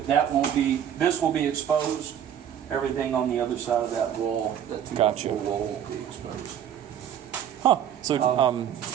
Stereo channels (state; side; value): quieter; left; 9.6 dB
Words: will be exposed. Everything on the other side of that wall, that 2 Gotcha. wall will be exposed. Huh. So